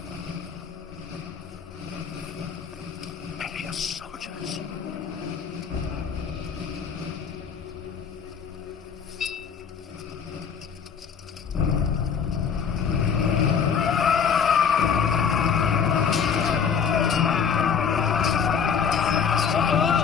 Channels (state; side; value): quieter; right; 6.8 dB